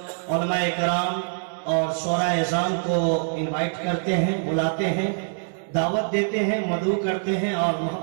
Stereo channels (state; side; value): silent; left; digital silence